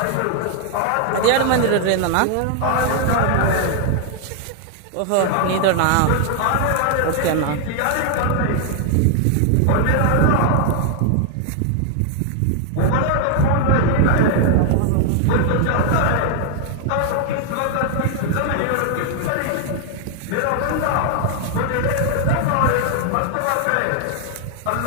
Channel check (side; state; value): both; different; correlation 0.00